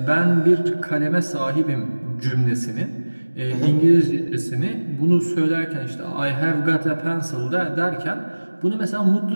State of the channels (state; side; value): inverted; both; correlation -1.00